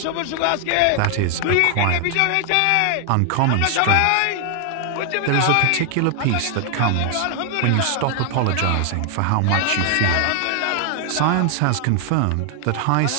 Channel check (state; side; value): different; both; correlation 0.00